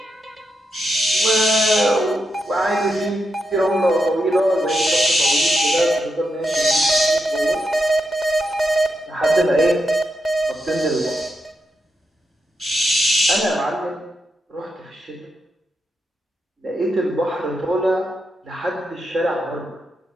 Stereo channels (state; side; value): normal; both; correlation 0.84